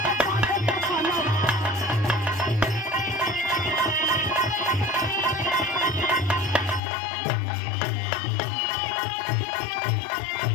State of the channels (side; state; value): right; drops out; at 6.8 s